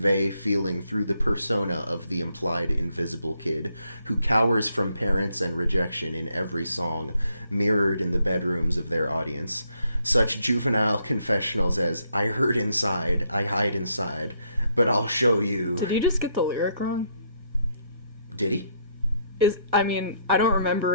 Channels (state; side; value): inverted; both; correlation -0.73